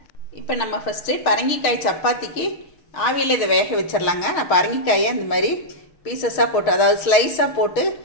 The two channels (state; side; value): late; right; 6.4 ms